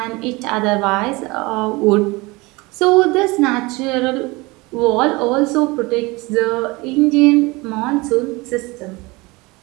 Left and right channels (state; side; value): quieter; left; 23.8 dB